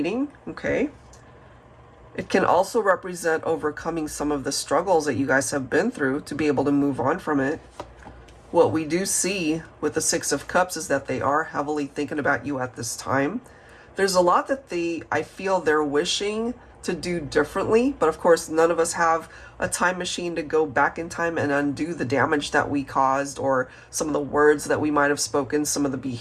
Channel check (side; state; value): both; identical; correlation 1.00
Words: okay? It can also represent overcoming some of the struggles that you guys have been through to be able to move on from it. What we do see with the Six of Cups is that they are heavily thinking about you at this time. There's a lot that I feel they're wishing to do differently, but of course none of us have a time machine to go back in time and undo the damage that we caused, or some of the words that we might have spoken, some of the